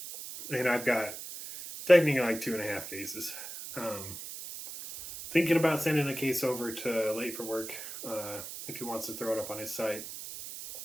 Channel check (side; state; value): right; noise; hiss, 10 dB below the sound